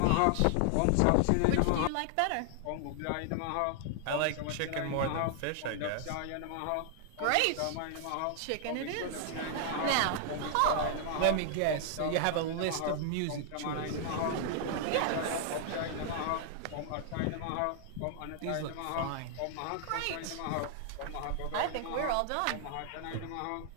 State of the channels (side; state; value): both; different; correlation -0.01